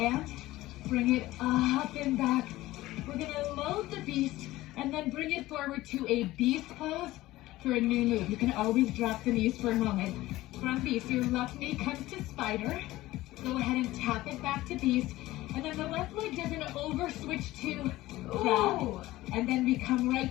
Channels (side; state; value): right; quieter; 17.2 dB